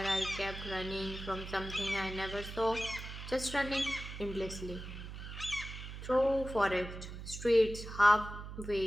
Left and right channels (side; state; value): right; noise; hum, 10 dB below the sound